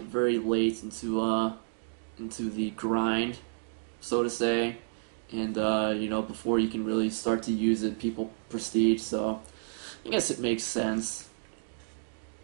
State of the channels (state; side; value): silent; left; digital silence